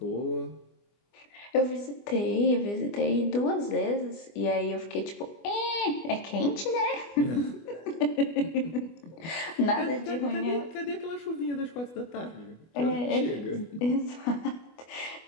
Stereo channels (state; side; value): late; right; 25 ms